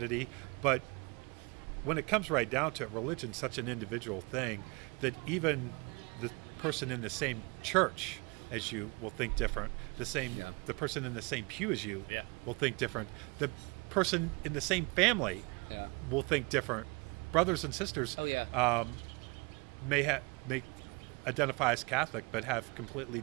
But when it comes right down to it, religion's such an individual thing that even the person in the same church as you will think different. The person in the same pew as you will think different. The person in the same family will think different. Brothers and sisters may identify as Catholic, but have completely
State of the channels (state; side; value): quieter; left; 28.6 dB